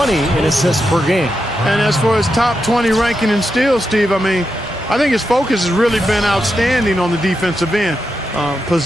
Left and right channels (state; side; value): normal; both; correlation 0.86